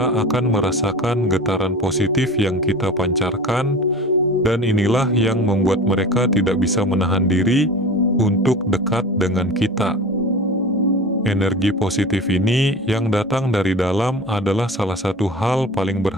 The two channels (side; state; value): both; normal; correlation 0.35